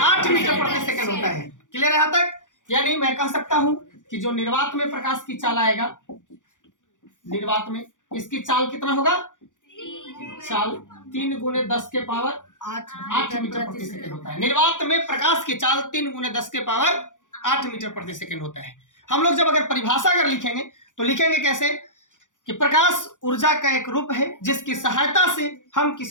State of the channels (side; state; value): right; late; 0.87 ms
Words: मीटर प्रति सेकंड होता है। क्लियर है यहां तक? यानी मैं कह सकता हूं कि जो निर्वात में प्रकाश की चाल आएगा, निर्वात में इसकी चाल कितना होगा? चाल 3×10⁸ मीटर प्रति सेकंड होता है। निर्वात में प्रकाश की चाल 3×10⁸ मीटर प्रति सेकंड होता है। हम लोग जब अगर परिभाषा अगर लिखेंगे तो लिखेंगे कैसे कि प्रकाश ऊर्जा का एक रूप है जिसकी सहायता से हम